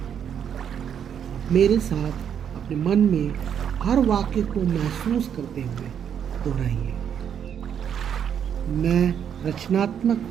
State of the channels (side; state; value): left; quieter; 8.5 dB